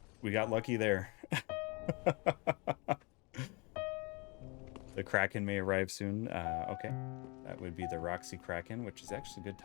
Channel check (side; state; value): right; quieter; 29.3 dB